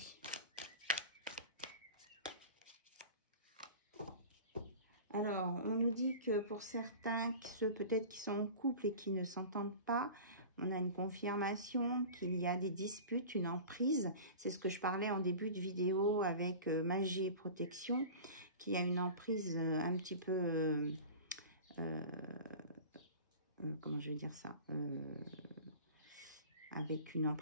Alors, on nous dit que pour certains, ceux peut-être qui sont en couple et qui ne s'entendent pas, on a une confirmation qu'il y a des disputes, une emprise. C'est ce que je parlais en début de vidéo avec magie et protection, qui a une emprise un petit peu... comment je vais dire ça avec une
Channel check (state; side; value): inverted; both; correlation -0.37